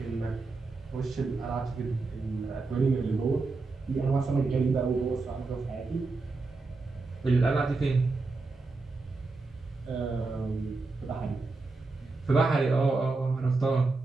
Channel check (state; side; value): quieter; left; 3.8 dB